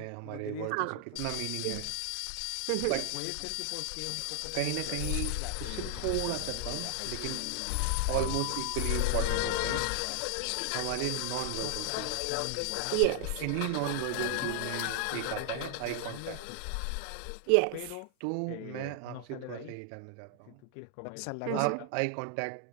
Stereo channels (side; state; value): both; different; correlation 0.00